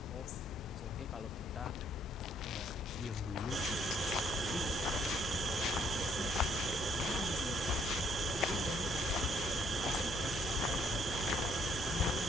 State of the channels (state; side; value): normal; both; correlation 0.66